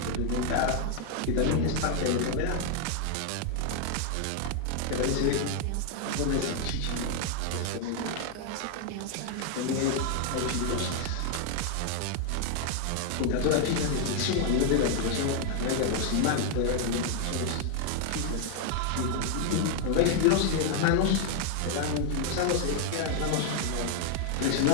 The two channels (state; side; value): different; both; correlation 0.00